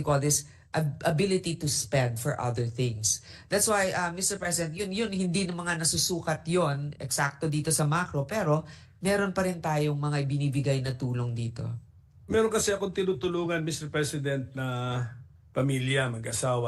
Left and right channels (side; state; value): both; identical; correlation 1.00